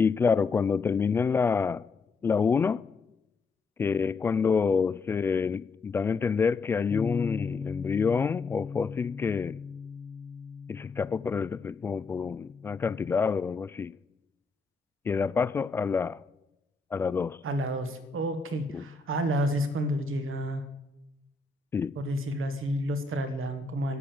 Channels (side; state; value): right; quieter; 4.3 dB